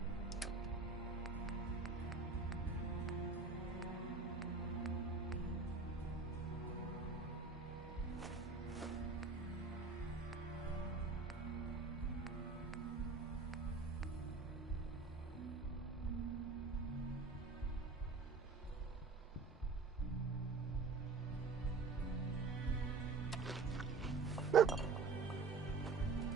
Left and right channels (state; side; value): quieter; left; 4.3 dB